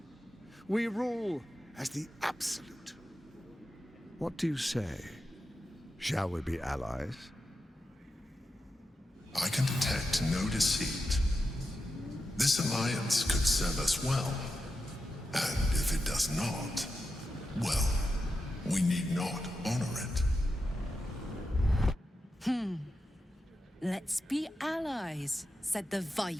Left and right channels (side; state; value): both; normal; correlation 0.89